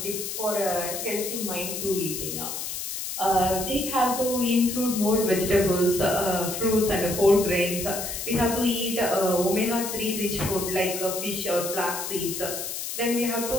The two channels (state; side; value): noise; left; hiss, 5 dB below the sound